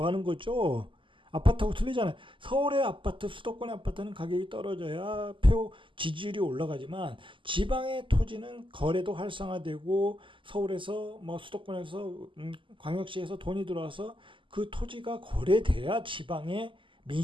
거죠. 아파트하고 틀리잖아요. 서울의 아파트, 수도권의 아파트는 가격이 떨어져야 표 지지율이 올라가지만 지방의 토지는 거래도 활성화되고 서울에서 뭐 수도권에서 광역시에서 돈이 들어와서 그 토지가 거래돼야 지방의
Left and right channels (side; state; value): left; late; 0.25 ms